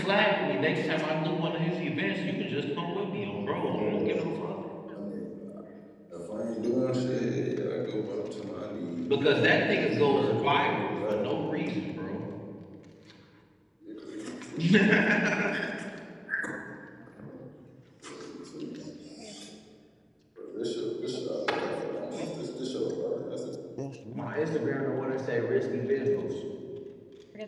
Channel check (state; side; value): identical; both; correlation 1.00